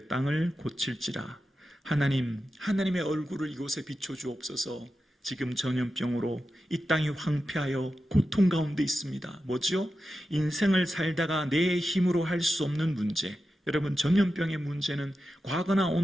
땅을 고칠지라. 하나님의 얼굴을 이곳에 비춰주옵소서. 지금 전염병으로 이 땅이 황폐하여 고통 가운데 있습니다. 뭐죠? 인생을 살다가 내 힘으로 할 수 없는 문제. 여러분, 전염병의 문제는 과거나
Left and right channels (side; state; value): both; normal; correlation 0.91